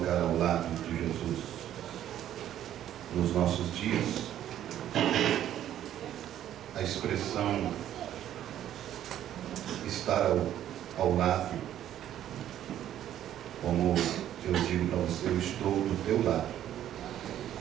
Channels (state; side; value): quieter; left; 11.4 dB